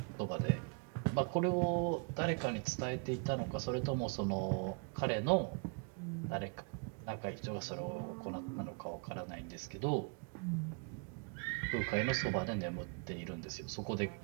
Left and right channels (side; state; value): left; quieter; 36.6 dB